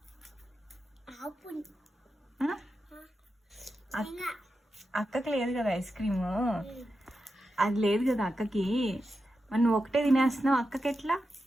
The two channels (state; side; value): normal; both; correlation 0.89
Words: అక్కకి లేదు కదా ఐస్ క్రీము, అది లేదు కదా అక్కకి. మరి నువ్వు ఒకటే తినేస్తున్నావు, అక్కకి ఎట్లా